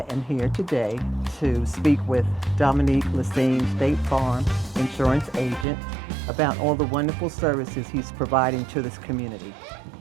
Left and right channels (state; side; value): drops out; left; at 5.7 s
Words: am here today to speak with Dominique, Lesine, State Farm Insurance Agent, about all the wonderful services he's providing to this community.